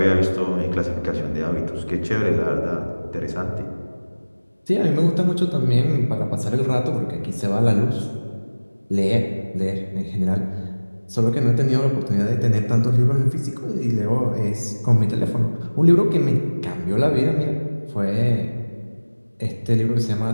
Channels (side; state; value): both; inverted; correlation -1.00